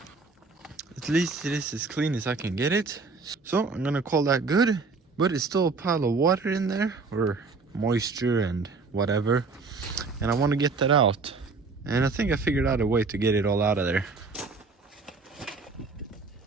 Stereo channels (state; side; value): quieter; left; 4.2 dB